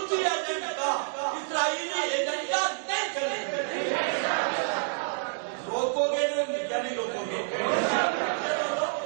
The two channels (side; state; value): left; silent; digital silence